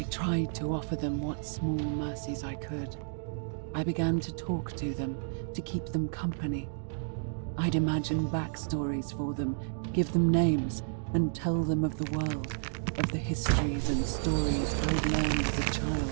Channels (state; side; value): silent; left; digital silence